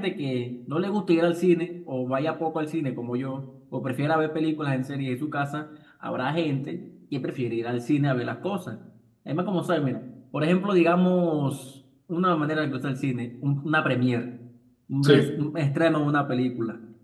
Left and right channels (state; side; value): identical; both; correlation 1.00